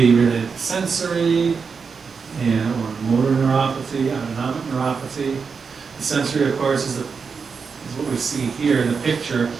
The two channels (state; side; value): quieter; left; 5.5 dB